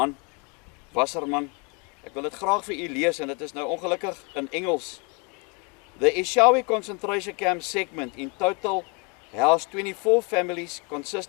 Wasserman, ek wil dit graag vir u lees, en dit is nou ongelukkig in Engels. The Eshowe concentration camp segment in total housed 24 families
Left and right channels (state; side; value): quieter; right; 32.8 dB